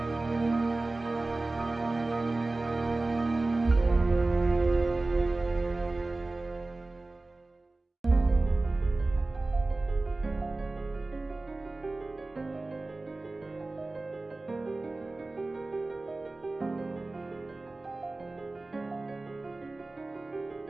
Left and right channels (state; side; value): quieter; left; 3.2 dB